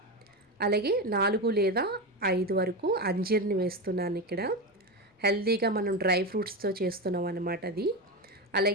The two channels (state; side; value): normal; both; correlation 0.17